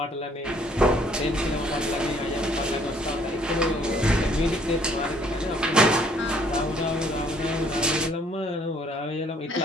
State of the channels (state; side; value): normal; both; correlation 0.62